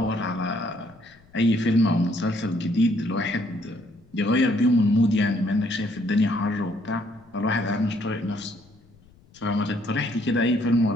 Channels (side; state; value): left; noise; rumble, 28 dB below the sound